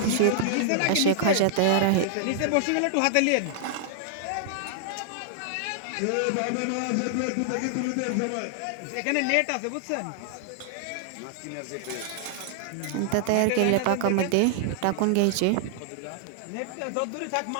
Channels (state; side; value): different; both; correlation -0.01